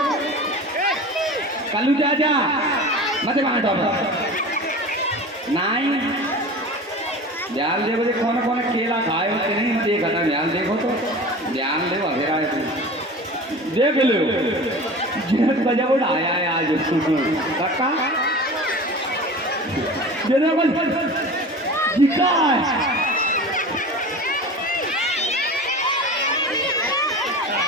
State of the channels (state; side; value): normal; both; correlation 0.35